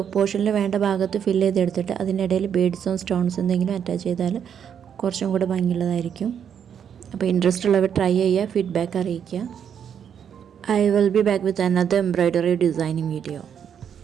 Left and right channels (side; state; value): left; quieter; 8.2 dB